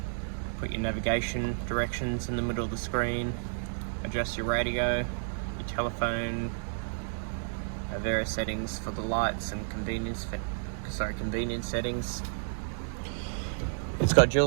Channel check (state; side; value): silent; left; digital silence